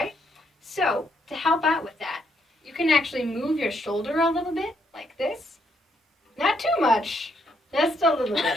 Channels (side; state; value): both; normal; correlation 0.74